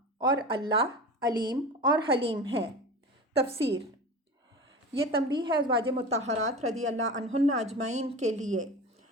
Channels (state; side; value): normal; both; correlation 0.31